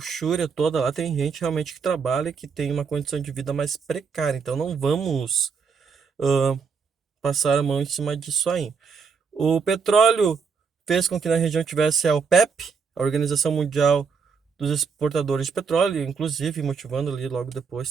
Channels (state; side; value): quieter; left; 5.7 dB